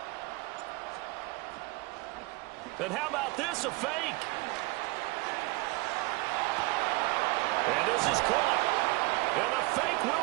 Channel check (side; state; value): left; quieter; 23.4 dB